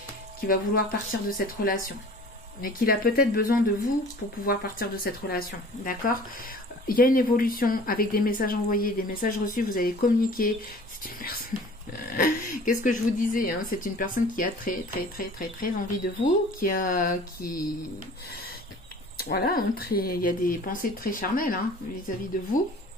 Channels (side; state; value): both; normal; correlation 0.46